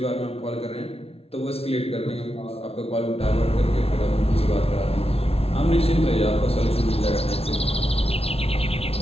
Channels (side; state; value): right; late; 0.29 ms